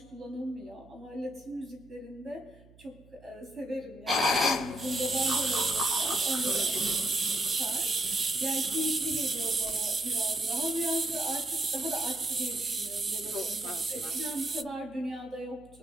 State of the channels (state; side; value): noise; right; hum, 25 dB below the sound